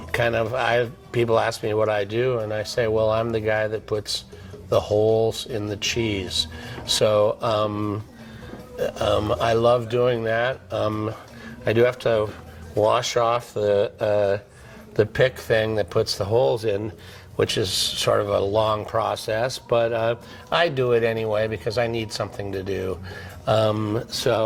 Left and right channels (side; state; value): both; identical; correlation 1.00